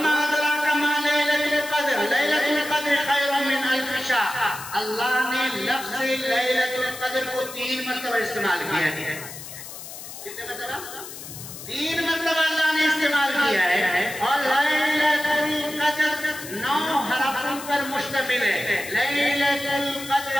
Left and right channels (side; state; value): left; noise; hiss, 12 dB below the sound